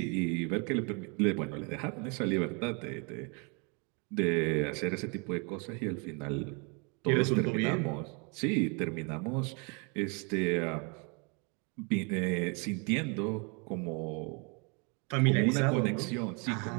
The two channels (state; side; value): quieter; left; 33.5 dB